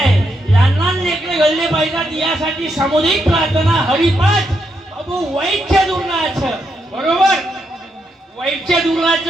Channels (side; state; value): both; normal; correlation 0.80